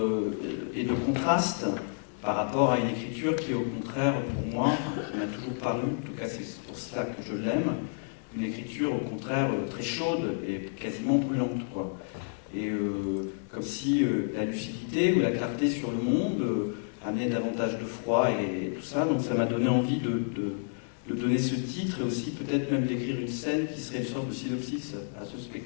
et de contraste par rapport à une écriture qui, au contraire, pour moi, qui m'a toujours paru, en tout cas c'est pour cela que je l'aime, une écriture au contraire très chaude et quasiment brûlante, quoi. Et comme si la lucidité ou la clarté sur le monde amenait davantage de froid et tout ça. Donc ça m'a donné envie de donner ce titre et aussi peut-être même d'écrire une scène qui serait une sorte de synopsis à ce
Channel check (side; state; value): right; silent; digital silence